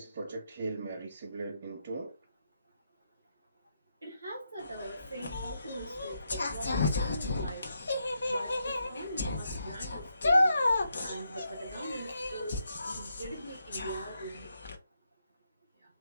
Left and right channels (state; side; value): inverted; both; correlation -0.81